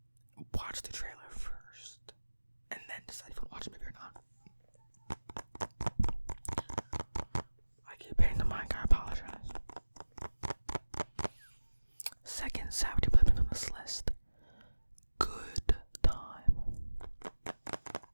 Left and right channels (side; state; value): both; inverted; correlation -1.00